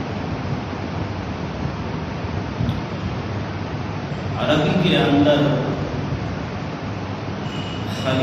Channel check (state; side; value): identical; both; correlation 1.00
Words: عربی کے اندر